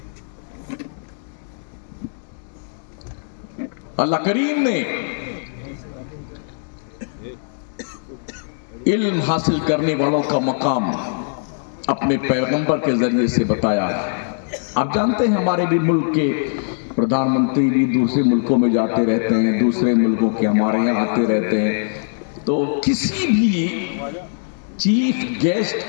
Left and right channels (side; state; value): right; silent; digital silence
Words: اللہ کریم نے علم حاصل کرنے والوں کا مقام اپنے پیغمبر کے ذریعے سے بتایا ہے. آپ جانتے ہیں ہمارے بھی ملک کے پردھان منتری بھی دوسرے ملکوں میں جاتے رہتے ہیں, دوسرے ملکوں کے ہمارے یہاں آتے رہتے ہیں. تو کسی بھی چیف